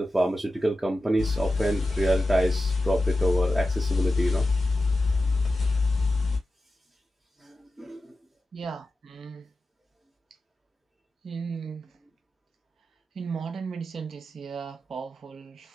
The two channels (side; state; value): both; normal; correlation 0.92